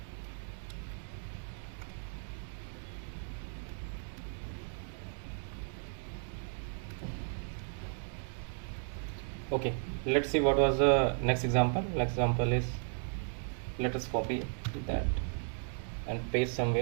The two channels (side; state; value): left; silent; digital silence